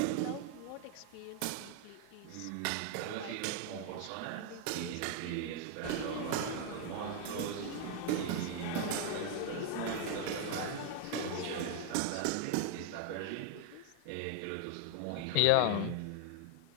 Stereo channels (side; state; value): both; different; correlation 0.00